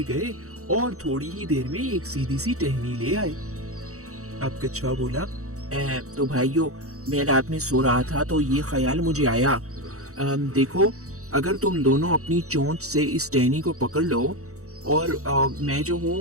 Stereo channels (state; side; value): late; left; 0.65 ms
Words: गए और थोड़ी ही देर में एक सीधी सी टहनी ले आए। अब कछुआ बोला, तो भाइयों, मैं रात में सो रहा था तो ये ख्याल मुझे आया। देखो, अगर तुम दोनों अपनी चोंच से इस टहनी को पकड़ लो और मैं जो